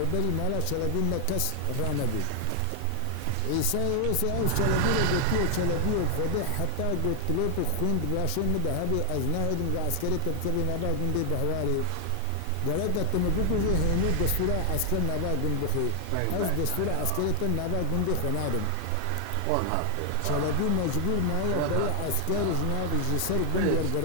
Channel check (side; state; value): both; different; correlation 0.00